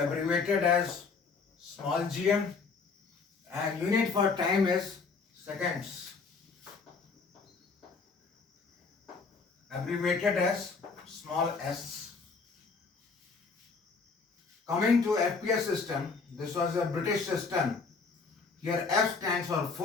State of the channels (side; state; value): right; quieter; 4.7 dB